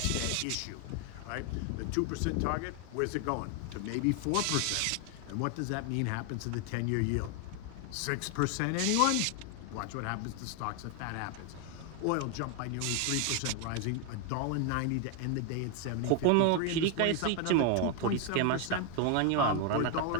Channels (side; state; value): both; different; correlation 0.01